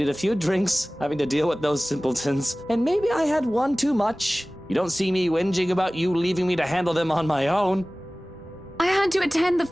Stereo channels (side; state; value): both; normal; correlation 0.98